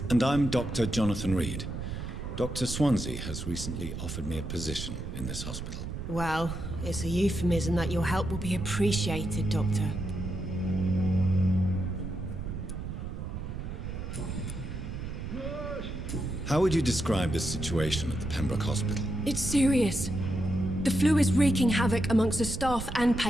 And I'm Dr. Jonathan Reid. Dr. Swansea has recently offered me a position in this hospital. Well, it's a euphemism that your help will be appreciated, Doctor. How would you describe the situation at the Pembroke Hospital? It's serious. The flu is wreaking havoc amongst the staff and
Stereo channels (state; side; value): noise; right; rumble, 7 dB below the sound